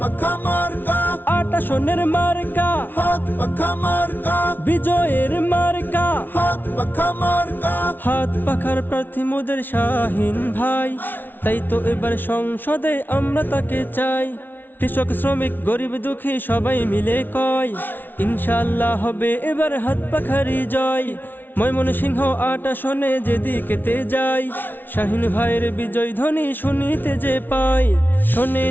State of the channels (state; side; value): late; right; 0.092 ms